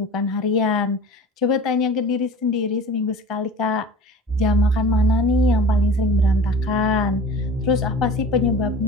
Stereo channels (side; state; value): both; normal; correlation 0.39